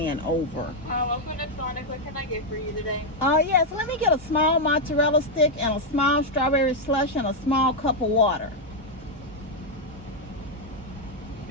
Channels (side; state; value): both; normal; correlation 0.00